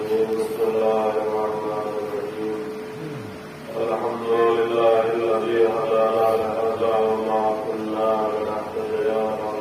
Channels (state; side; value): identical; both; correlation 1.00